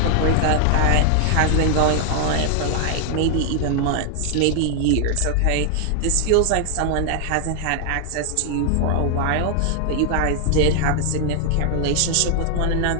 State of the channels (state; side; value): different; both; correlation 0.00